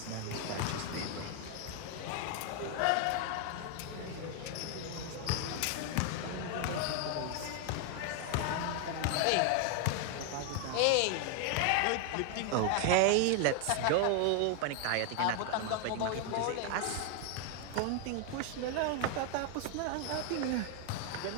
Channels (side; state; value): both; different; correlation 0.00